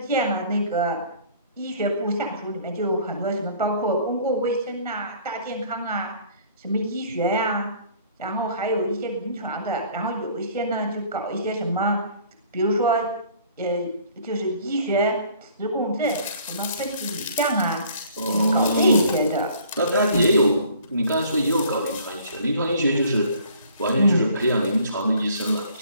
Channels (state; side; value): inverted; both; correlation -0.54